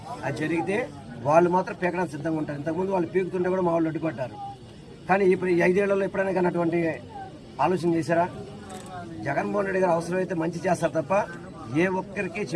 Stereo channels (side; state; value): both; identical; correlation 1.00